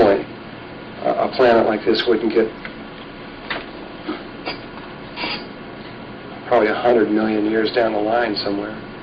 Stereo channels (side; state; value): both; identical; correlation 1.00